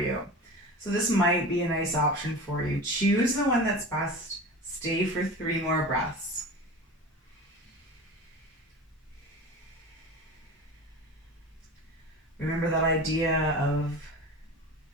So this might be a nice option for you. Choose the one that's best. Stay for 3 more breaths. Remember that idea of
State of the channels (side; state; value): both; normal; correlation 0.33